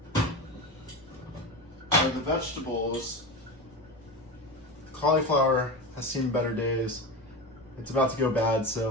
are the vegetables. The cauliflower has seen better days. It's about to go bad,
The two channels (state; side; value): noise; left; rumble, 29 dB below the sound